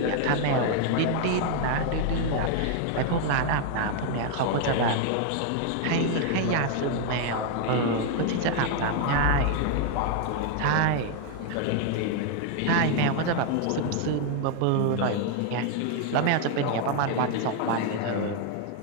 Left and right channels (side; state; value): both; different; correlation 0.00